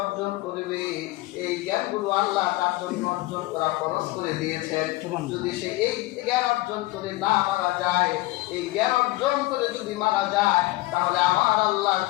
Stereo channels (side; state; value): right; quieter; 19.5 dB